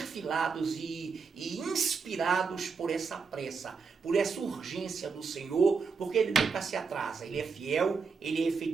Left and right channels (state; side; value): quieter; left; 5.2 dB